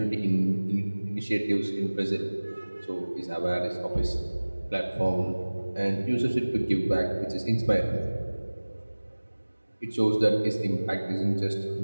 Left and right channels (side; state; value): both; inverted; correlation -1.00